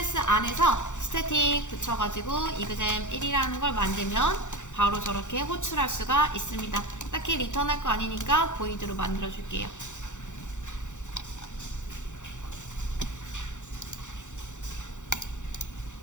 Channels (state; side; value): late; right; 0.85 ms